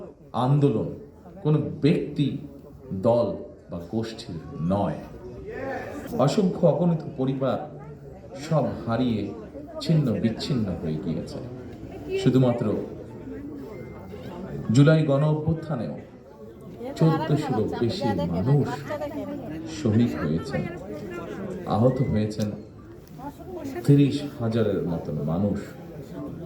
আন্দোলন কোনো ব্যক্তি, দল বা গোষ্ঠীর নয়। অসংখ্য অগণিত পরিবার সব হারিয়ে ছিন্ন বিচ্ছিন্ন হয়ে গিয়েছে। শুধুমাত্র জুলাই গণ অভ্যুত্থানেও 1400-ও বেশি মানুষ শহীদ হয়েছেন, আহত হয়েছেন 30,000-এর মতন মানুষ।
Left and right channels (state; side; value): identical; both; correlation 1.00